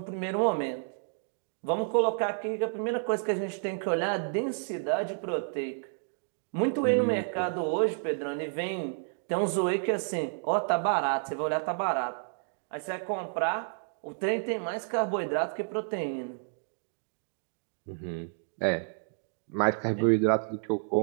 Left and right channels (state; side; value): silent; left; digital silence